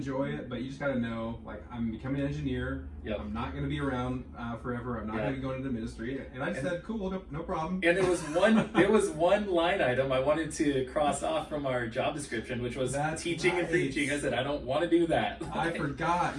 it, but you just gotta know, like, I'm becoming an engineer. Yep. I'm not gonna be around forever. I'm not gonna be going into ministry. And I said, cool, no problem. And there was one line item I wanted to cross off from our job description, which was teaching and preaching. I said, I don't want to do that. I forgot.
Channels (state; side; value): identical; both; correlation 1.00